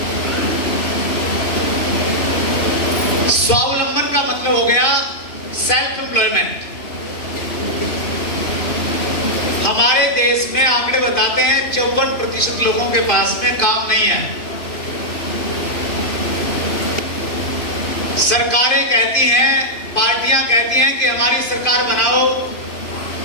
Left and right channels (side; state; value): right; late; 2.5 ms